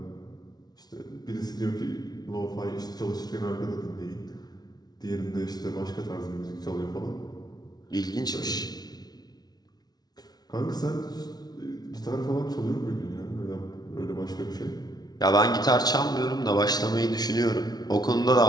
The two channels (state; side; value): late; right; 0.19 ms